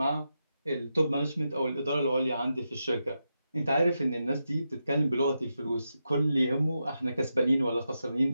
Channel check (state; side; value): inverted; both; correlation -0.87